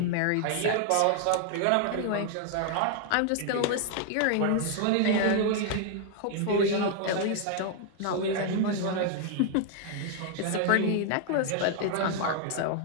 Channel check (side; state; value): both; different; correlation 0.00